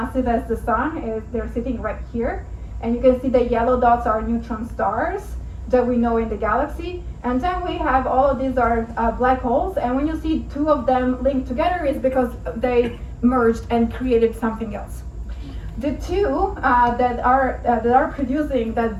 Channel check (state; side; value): identical; both; correlation 1.00